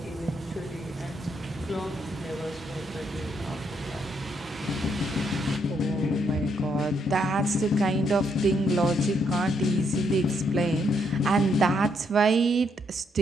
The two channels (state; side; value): normal; both; correlation 0.75